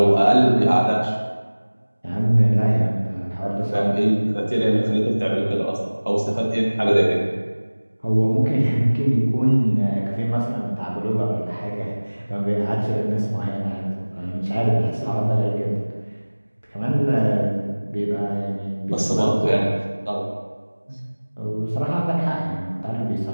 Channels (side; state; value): both; inverted; correlation -1.00